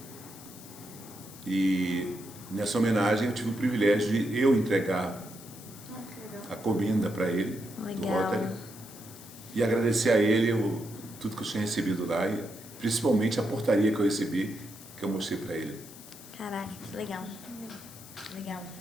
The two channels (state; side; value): noise; left; hiss, 17 dB below the sound